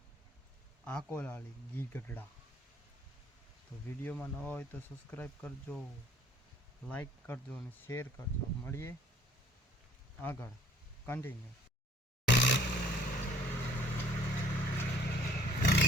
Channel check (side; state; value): both; normal; correlation 0.56